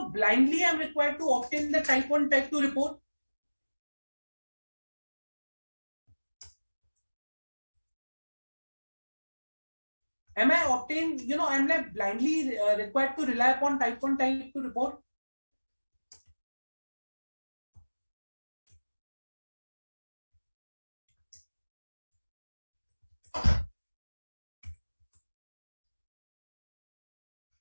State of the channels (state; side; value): inverted; both; correlation -1.00